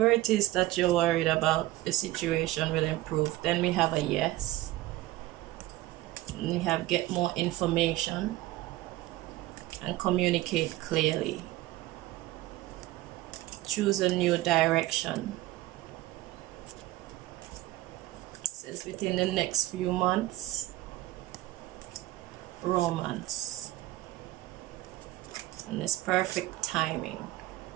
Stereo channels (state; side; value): quieter; left; 16.7 dB